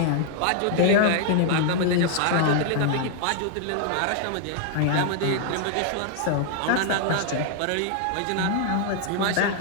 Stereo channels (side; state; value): both; different; correlation 0.00